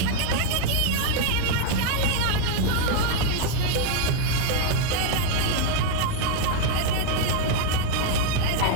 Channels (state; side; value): different; both; correlation 0.00